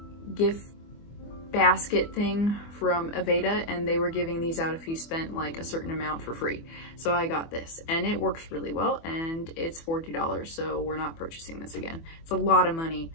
gift basket thing from Aveda, and they were giving these out if you spent like a certain amount for free. So I got this, and it works really well, and it's $40, so we're not purchasing this again. It's a lot of money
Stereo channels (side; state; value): right; late; 24 ms